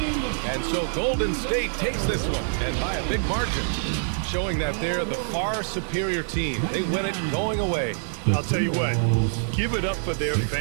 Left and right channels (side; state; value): left; silent; 61 dB below the other